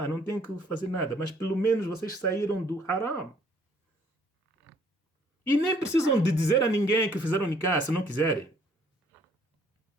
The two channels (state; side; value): normal; both; correlation 0.62